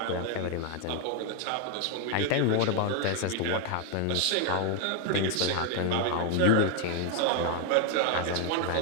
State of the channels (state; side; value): different; both; correlation 0.01